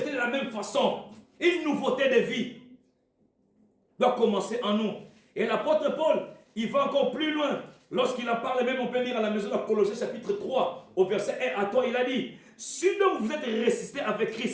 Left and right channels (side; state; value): both; identical; correlation 1.00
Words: de la même façon. Une nouveauté de vie doit commencer en nous. Et l'apôtre Paul, il va encore plus loin. Lorsqu'il en parle même, on peut lire à la maison de Colossiens chapitre 3, au verset 1 à 3, il a dit, si donc vous êtes ressuscités avec